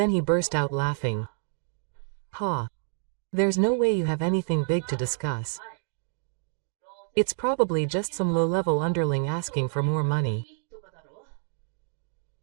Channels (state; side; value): silent; left; digital silence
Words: he burst out laughing. Ha! There's no way you have anything big to discuss. It's probably just some low-level underling asking for more money.